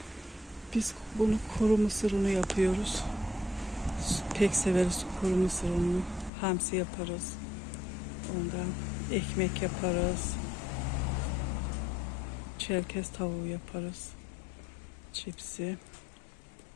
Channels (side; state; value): right; drops out; at 6.3 s